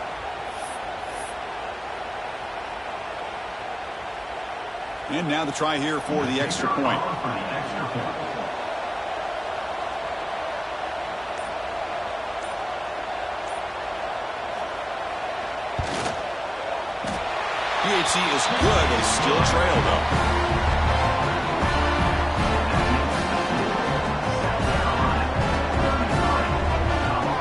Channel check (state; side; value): identical; both; correlation 1.00